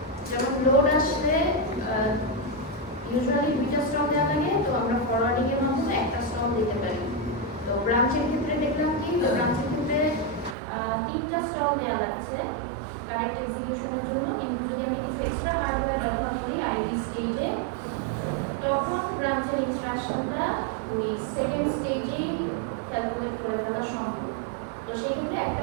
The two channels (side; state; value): left; drops out; at 10.6 s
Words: যেমন লোড আসলে ইউজুয়ালি 2টা স্টল দেওয়া লাগে, তো আমরা ফরওয়ার্ডিং এর মাধ্যমে একটা স্টল দিতে পারি। তো ব্রাঞ্চের ক্ষেত্রে দেখলাম কি, তো ব্রাঞ্চের ক্ষেত্রে 3টা স্টল দেওয়া লাগছে কারেক্ট এক্সিকিউশনের জন্য, কিন্তু যদি আমি কিছু এক্সট্রা হার্ডওয়্যার ব্যবহার করি আইডি স্টেজে, তখন ব্রাঞ্চের ইনস্ট্রাকশনটা ওই সেকেন্ড স্টেজেই ক্যালকুলেট করে ফেলা সম্ভব। তো সেই ক্ষেত্রে একটা